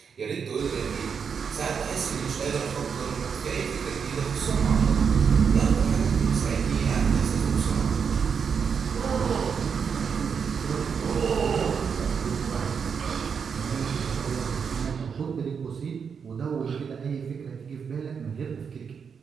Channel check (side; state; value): left; quieter; 6.5 dB